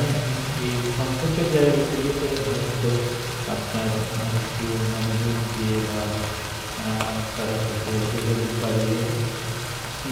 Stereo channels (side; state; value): both; identical; correlation 1.00